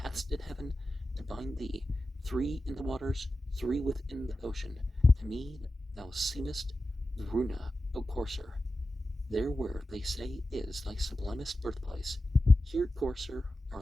in heaven to bind thee. 3 in the waters, 3 within the ocean. To me thou seemest Varuna, O courser. There where, they say, is thy sublimest birthplace. Here, courser,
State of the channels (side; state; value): both; normal; correlation 0.93